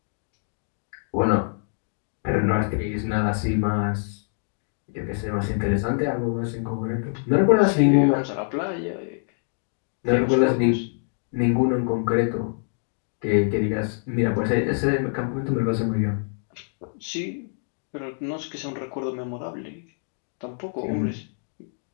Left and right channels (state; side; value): silent; right; 61 dB below the other